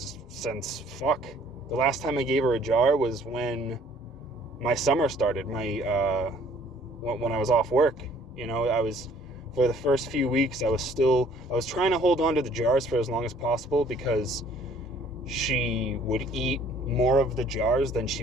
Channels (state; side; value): normal; both; correlation 0.58